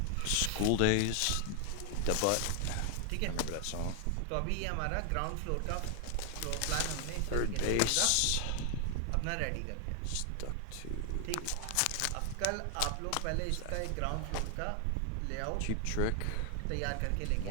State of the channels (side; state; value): both; different; correlation 0.00